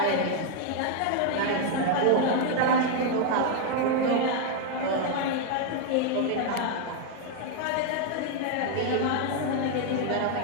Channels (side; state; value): both; different; correlation 0.00